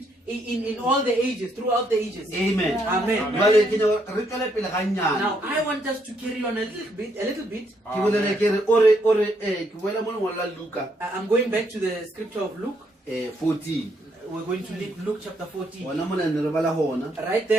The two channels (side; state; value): both; normal; correlation 0.73